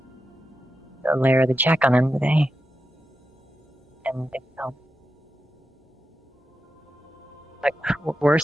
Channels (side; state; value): both; normal; correlation 0.89